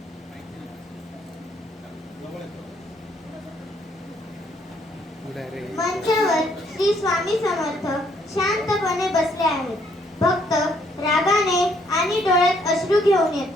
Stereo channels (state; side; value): normal; both; correlation 0.68